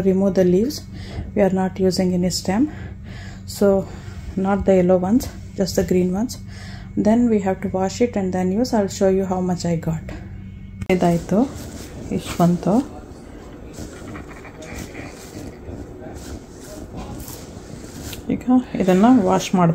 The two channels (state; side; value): identical; both; correlation 1.00